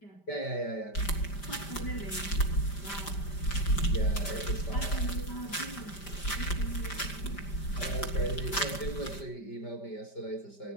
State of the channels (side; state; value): right; late; 5.1 ms